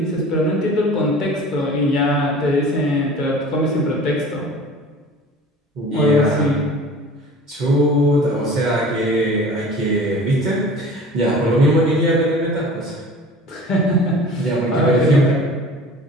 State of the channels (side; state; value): both; normal; correlation 0.42